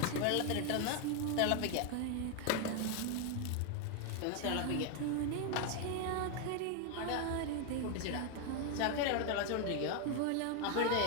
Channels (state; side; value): different; both; correlation 0.01